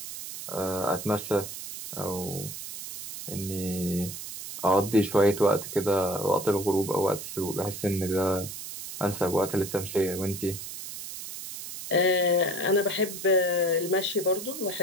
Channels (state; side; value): noise; right; hiss, 9 dB below the sound